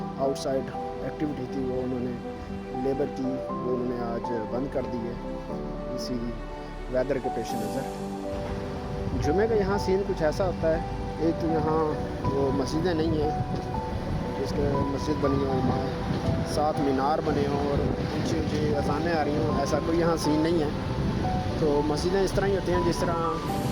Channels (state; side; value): identical; both; correlation 1.00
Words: आउटसाइड एक्टिविटी थी वो उन्होंने लेबर की वो उन्होंने आज बंद कर दी है, इसी वेदर के पेश नज़र। जुमे का यहाँ सीन कुछ ऐसा होता है, एक तो यहाँ वो मस्जिदें नहीं हैं, जिसके मस्जिद बनी हो, वहाँ 7 मीनार बने हों और ऊँची ऊँची अज़ानें आ रही हों, ऐसा कोई यहाँ सीन नहीं है। तो मस्जिदें इस तरह ही होती हैं जिस तरह